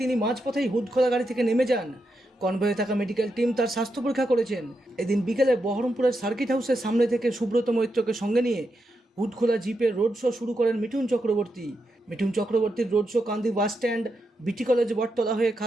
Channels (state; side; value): normal; both; correlation 0.85